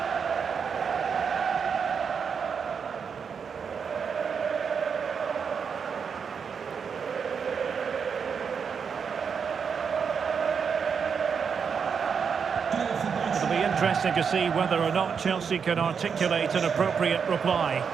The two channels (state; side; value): quieter; left; 6.4 dB